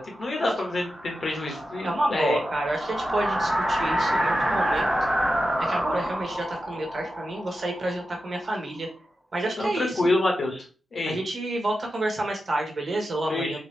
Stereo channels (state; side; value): normal; both; correlation 0.90